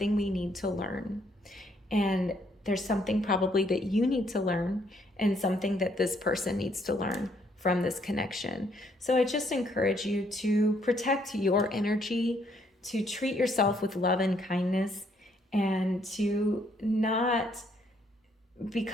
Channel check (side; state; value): both; normal; correlation 0.69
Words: we need to learn. And there's something probably that you need to learn, and something that this person needs to learn from this connection. So I just encourage you to protect your energy, to treat yourself with love and kindness, and to not